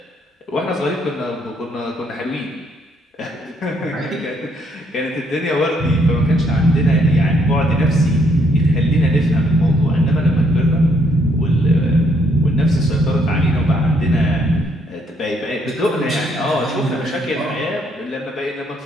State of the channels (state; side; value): normal; both; correlation 0.70